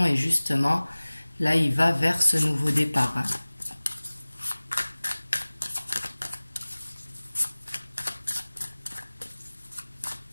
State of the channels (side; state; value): both; inverted; correlation -1.00